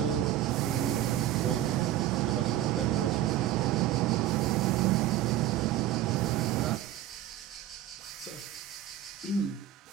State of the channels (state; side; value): quieter; left; 12.5 dB